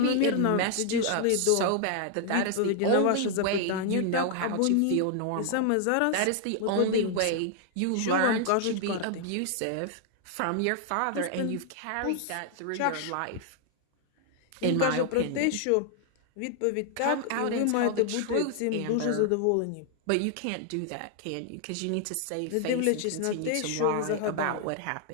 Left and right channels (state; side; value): different; both; correlation 0.00